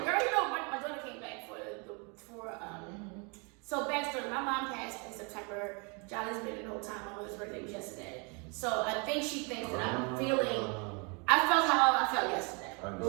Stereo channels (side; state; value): left; quieter; 32.9 dB